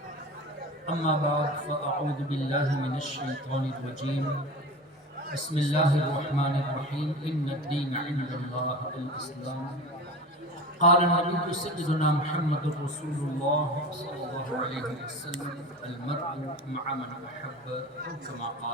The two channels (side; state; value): both; normal; correlation 0.32